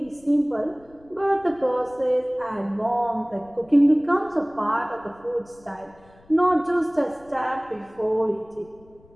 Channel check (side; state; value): left; noise; rumble, 27 dB below the sound